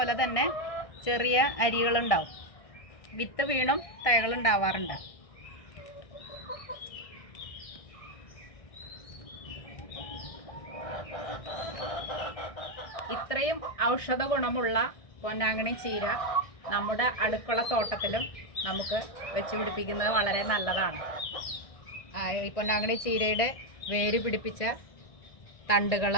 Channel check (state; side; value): late; right; 1.6 ms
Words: തന്നെ ചെറിയ അരികളുണ്ടാവും. വിത്ത് വീണും തൈകളുണ്ടാവാറുണ്ട്. ഇത്രയും ഔഷധ ഗുണമുള്ള പൊന്നാങ്കണ്ണി ചീര നമ്മുടെ അടുക്കള തോട്ടത്തിലും നമുക്ക് വെച്ച് പിടിപ്പിക്കുന്നത് വളരെ നല്ലതാണ്. ഈ പൊന്നാങ്കണ്ണി ചീരയുടെ വേര് പിടിപ്പിച്ച തണ്ടുകൾ